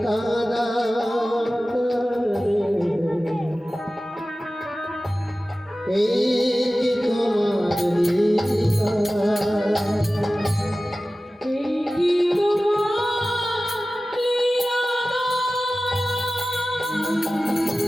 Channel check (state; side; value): normal; both; correlation 0.96